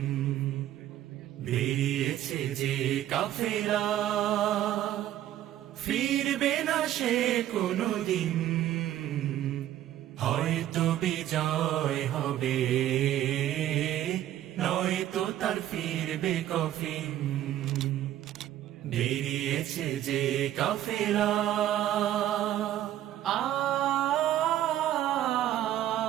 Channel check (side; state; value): left; quieter; 12.6 dB